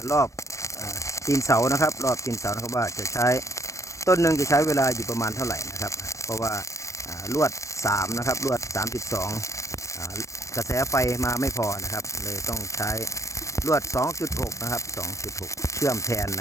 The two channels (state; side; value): late; right; 0.15 ms